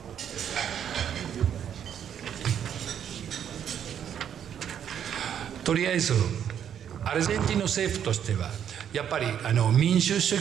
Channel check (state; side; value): quieter; left; 9.1 dB